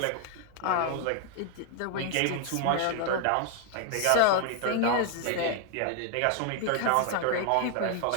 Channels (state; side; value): different; both; correlation 0.00